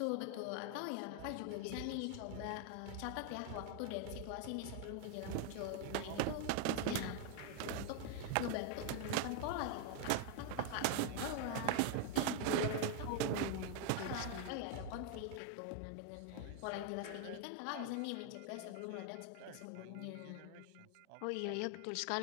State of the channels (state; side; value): different; both; correlation 0.00